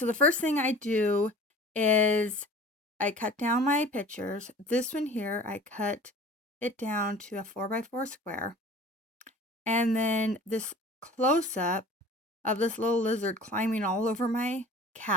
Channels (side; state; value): both; normal; correlation 0.44